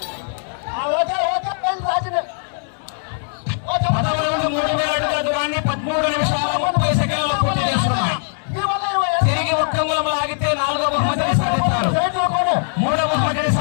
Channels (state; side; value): silent; right; 66 dB below the other